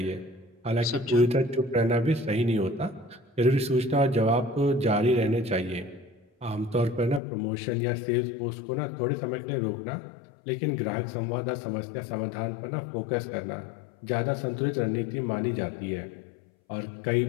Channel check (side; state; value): right; drops out; at 7.2 s